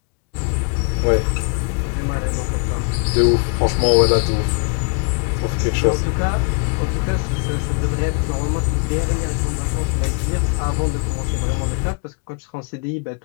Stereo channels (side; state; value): right; quieter; 37.8 dB